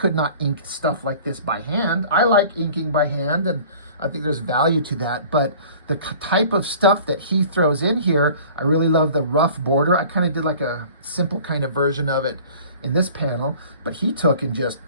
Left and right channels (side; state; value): both; inverted; correlation -0.47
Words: not ink stuff like this by hand. I like inking by hand, and I think there's value to that. But the type of stuff that he throws in here, I really love the rough border. I kind of did like a simple kind of version of it in this panel, but he took and just